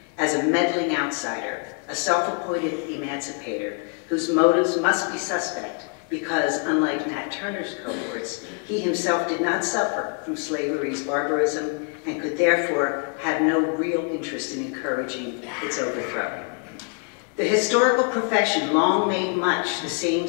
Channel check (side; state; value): right; quieter; 39.2 dB